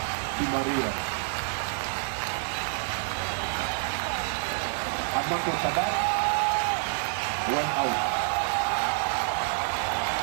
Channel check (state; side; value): silent; left; 59 dB below the other